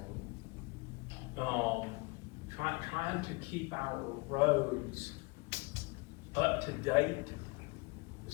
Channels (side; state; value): right; quieter; 28.3 dB